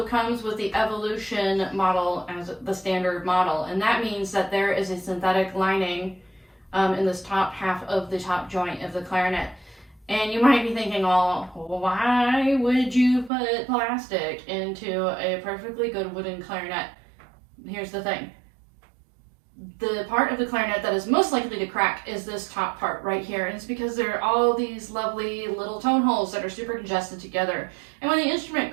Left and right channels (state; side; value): drops out; left; at 13.3 s